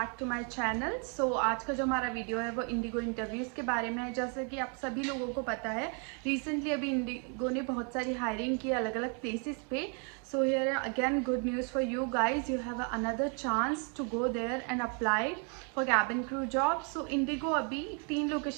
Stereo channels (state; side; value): quieter; left; 38.3 dB